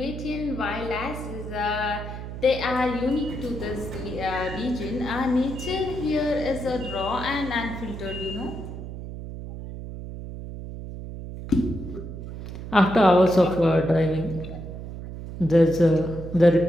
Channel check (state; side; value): noise; right; hum, 9 dB below the sound